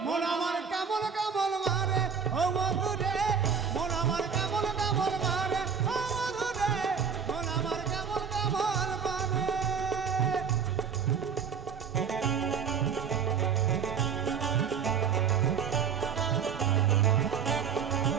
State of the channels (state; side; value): quieter; left; 6.7 dB